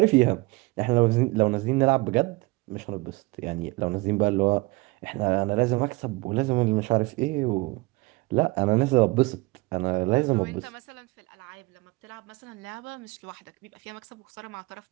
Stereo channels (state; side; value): quieter; left; 23.5 dB